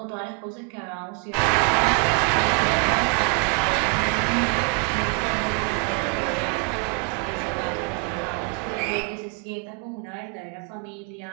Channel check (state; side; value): quieter; left; 35.5 dB